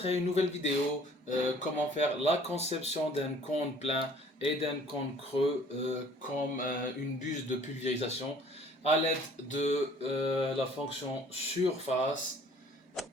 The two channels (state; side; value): normal; both; correlation 0.54